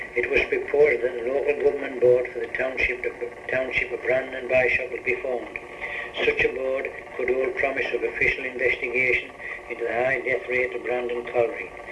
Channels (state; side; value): identical; both; correlation 1.00